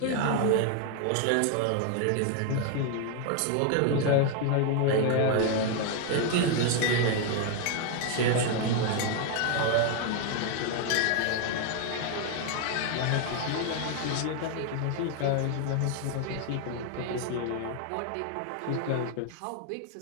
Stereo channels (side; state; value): both; different; correlation 0.00